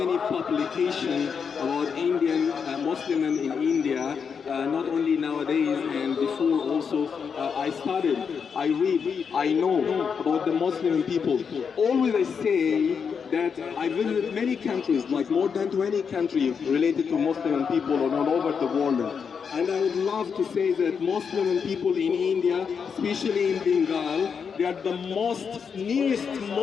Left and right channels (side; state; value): right; quieter; 6.4 dB